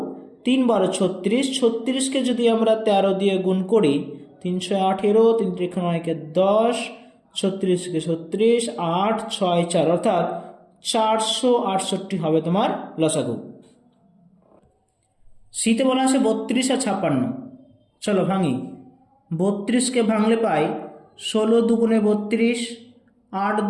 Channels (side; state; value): both; identical; correlation 1.00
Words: 3 12 36। 36কে যদি আমরা 13 দিয়ে গুণ করি 3 6 18, 3 3 9 10, 36কে 36, 8 6 4, অর্থাৎ 468 হবে তোমার লসাগু। সিতে বলা আছে 32 আর 56। চলো ভাঙি। 32কে ভাঙলে পাই 16 দুগুণে 32, 8